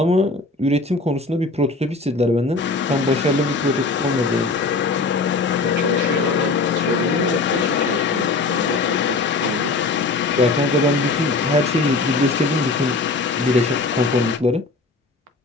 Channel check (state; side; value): quieter; right; 3.5 dB